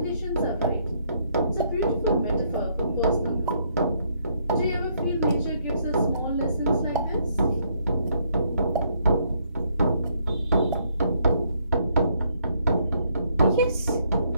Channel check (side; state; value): both; inverted; correlation -0.71